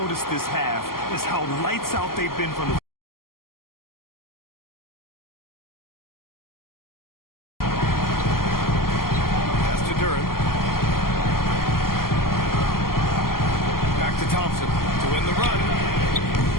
this half is how lights out they've been from the Pass to Duren. Back to Thompson to win the run.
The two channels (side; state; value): right; late; 0.92 ms